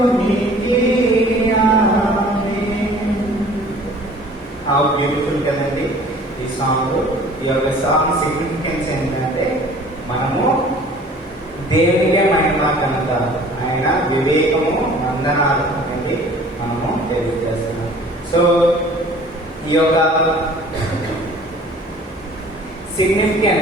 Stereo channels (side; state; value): both; normal; correlation 0.49